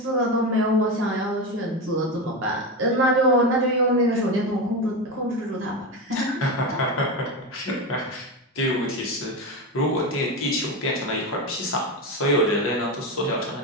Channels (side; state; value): both; normal; correlation 0.17